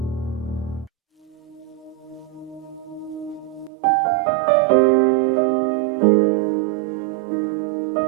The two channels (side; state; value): left; drops out; at 3.7 s